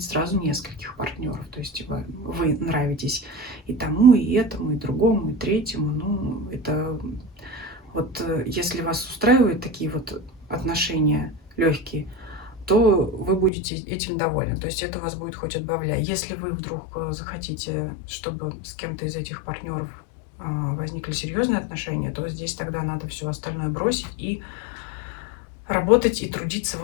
сразу нескольких партнеров, то есть вы нравитесь и тому, и этому, и другому, и третьему, ну, это вот если вас устраивают такие вот отношения легкие, то вы будете этим довольны. То есть это вас будет хоть отбавляй. Если вы вдруг захотите, чтобы с кем-то из этих партнеров возникли серьезные отношения, то здесь тогда надо все остальное бросить и работать и трудиться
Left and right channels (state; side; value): drops out; right; at 13.5 s